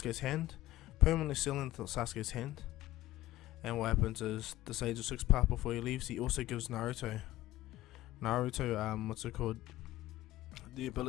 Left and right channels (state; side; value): quieter; right; 16.2 dB